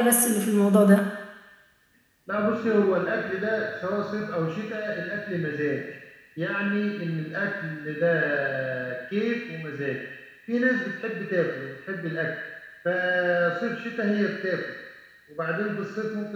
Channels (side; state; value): both; identical; correlation 1.00